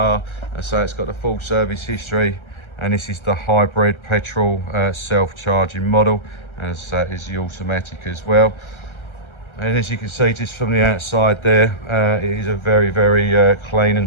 so it's got the full service history, and this is the hybrid petrol self-charging model, as is the automatic as well. And as you can see just from the outside there, it is a very, very clean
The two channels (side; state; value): right; late; 1.3 ms